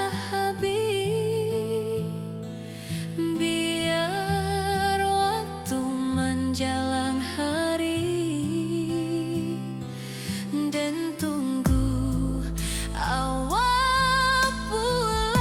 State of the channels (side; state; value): both; identical; correlation 1.00